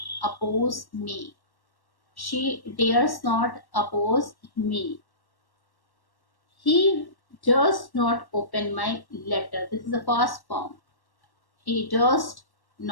oppose me. She dares not oppose me. He does not open my letter. This is the first form. He does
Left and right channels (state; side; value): late; right; 1.1 ms